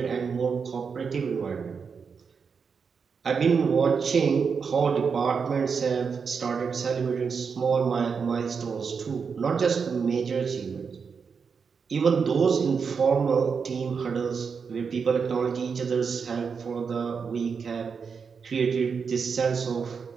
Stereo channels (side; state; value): left; quieter; 5.8 dB